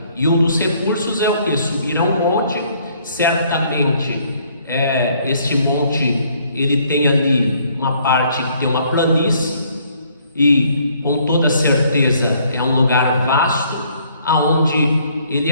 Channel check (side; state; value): both; inverted; correlation -0.64